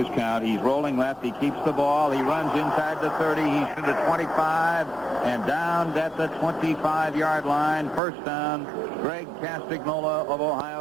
count. He's rolling left. He keeps the ball. He runs inside the 30. He's to the 25 and down at the 25-yard line. 1st down. Greg Castagnola of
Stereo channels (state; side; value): drops out; left; at 8.0 s